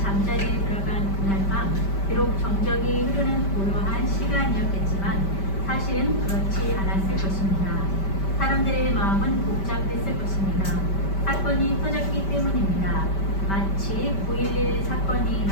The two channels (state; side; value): late; right; 5.1 ms